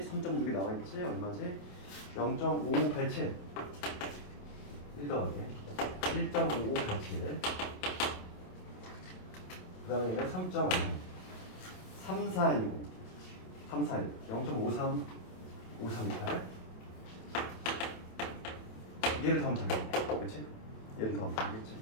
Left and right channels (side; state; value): right; late; 27 ms